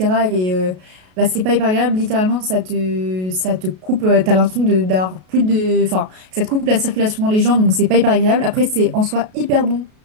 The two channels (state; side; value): late; left; 33 ms